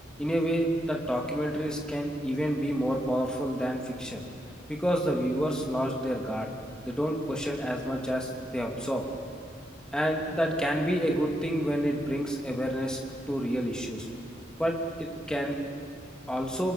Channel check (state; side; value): normal; both; correlation 0.81